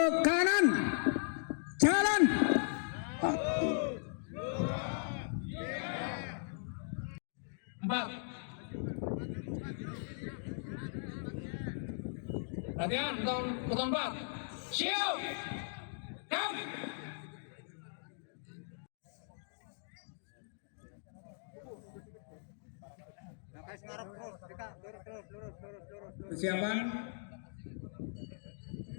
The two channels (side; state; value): right; silent; digital silence